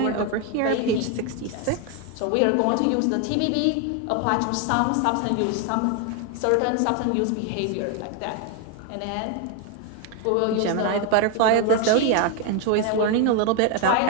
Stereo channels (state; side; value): different; both; correlation 0.01